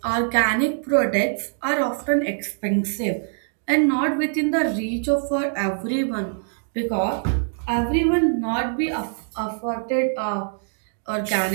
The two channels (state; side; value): silent; left; digital silence